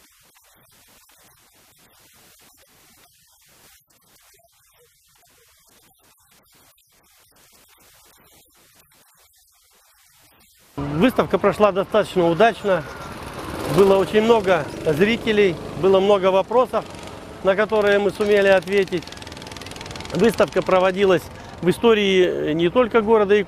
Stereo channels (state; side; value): identical; both; correlation 1.00